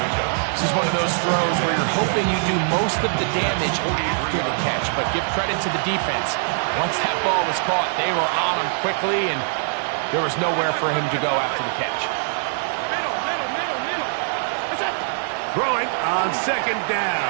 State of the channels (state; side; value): silent; left; digital silence